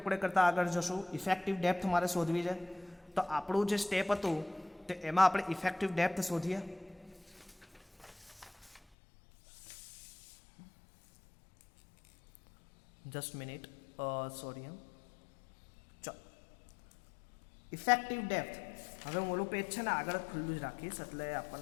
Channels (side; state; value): right; drops out; at 8.8 s